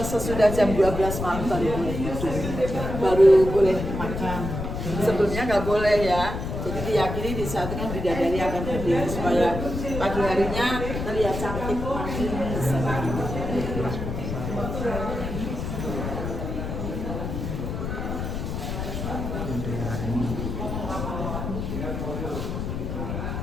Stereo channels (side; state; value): left; noise; rumble, 4 dB below the sound